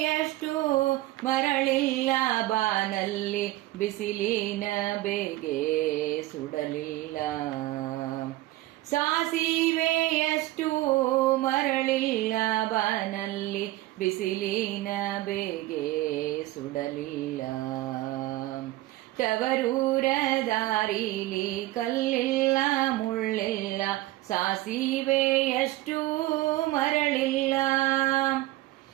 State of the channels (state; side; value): quieter; left; 17.5 dB